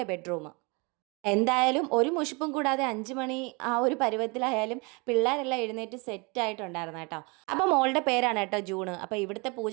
ബെഡ്റൂം. എന്തായാലും ഒരു മുഷിപ്പും കൂടാതെ 5 മണി ആ ഒരു പരുവത്തിലായാലും പിള്ളേരെല്ലാം എഴുന്നേറ്റ് സെറ്റായിട്ടുണ്ടായിരുന്നു കേട്ടോ. അപ്പോൾ മോളുടെ പേരാണ് കേട്ടോ ജൂണ്. അപ്പോൾ ഇവിടുത്തെ പൂജ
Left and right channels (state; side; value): quieter; left; 29.4 dB